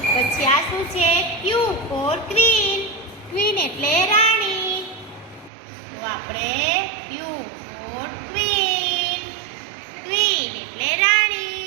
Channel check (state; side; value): drops out; left; at 5.5 s